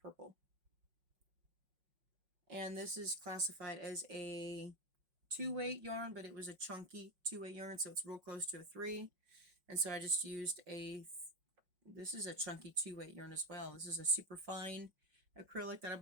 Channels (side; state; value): left; late; 5.5 ms